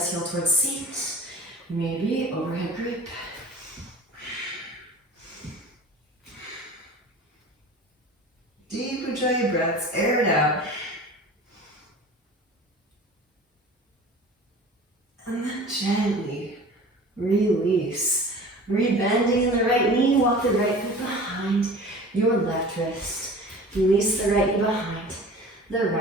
heel towards seat, maybe overhead grip. Deep Ujjayi breaths, air it out. And then gently release. Rebending the right knee, walk the right foot behind your left wrist. Release the right knee behind the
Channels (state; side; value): normal; both; correlation 0.40